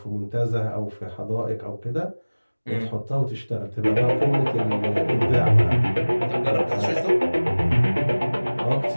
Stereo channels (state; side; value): inverted; both; correlation -1.00